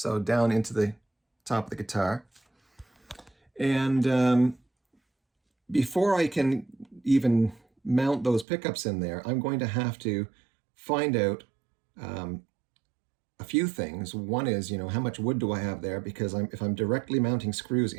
down into the top of the guitar. And before I can even mount those pickups in there, I'm going to have to find out a few things. One is, how much wood do I have there? Because if I'm directly mounting screws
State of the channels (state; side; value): drops out; left; at 8.5 s